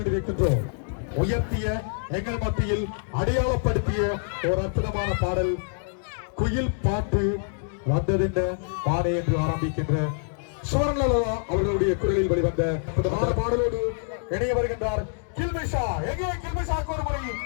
உயர்த்திய எங்கள் மத்தியில் அடையாளப்படுத்திய ஒரு அற்புதமான பாடல் குயில் பாட்டு வந்ததின்ற பாடை என்று ஆரம்பிக்கின்ற சோரங்கலா அவர்களுடைய குரலில் வெளிவந்த அற்புதமான பாடலோடு இணைய வருகின்றார் கில்மிஷா. எங்கே கில்மிஷாக்கு ஒரு முறை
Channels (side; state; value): right; silent; digital silence